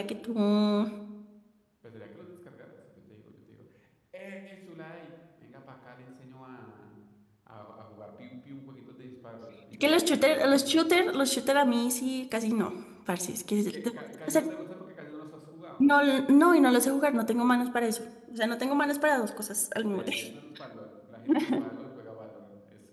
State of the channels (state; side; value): identical; both; correlation 1.00